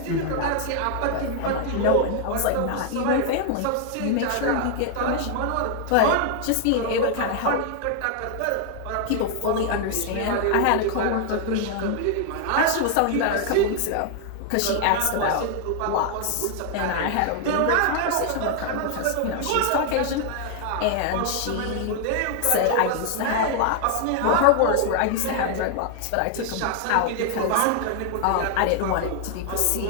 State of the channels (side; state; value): both; different; correlation 0.00